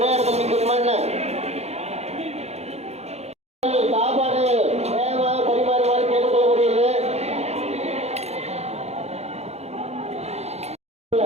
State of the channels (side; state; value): left; late; 0.31 ms